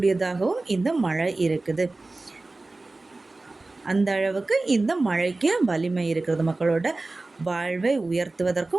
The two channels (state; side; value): quieter; left; 3.2 dB